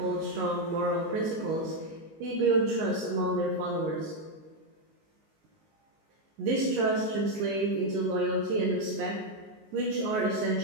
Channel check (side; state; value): left; late; 19 ms